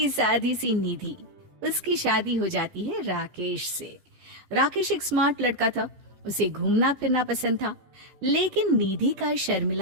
सादी सी निधि, उसकी शादी हो जाती है राकेश से। राकेश एक स्मार्ट लड़का था, उसे घूमना फिरना पसंद था, लेकिन निधि का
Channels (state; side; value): late; left; 15 ms